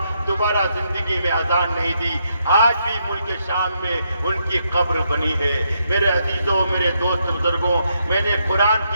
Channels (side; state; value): both; inverted; correlation -0.78